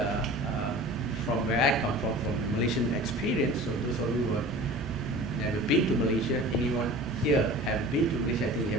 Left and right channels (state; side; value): normal; both; correlation 0.40